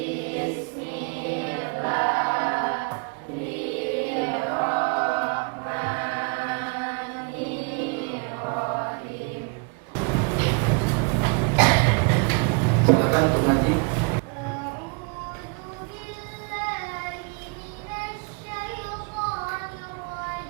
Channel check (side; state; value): left; quieter; 33.3 dB